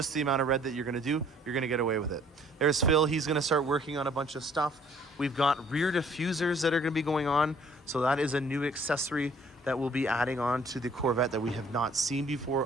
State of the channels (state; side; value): normal; both; correlation 0.57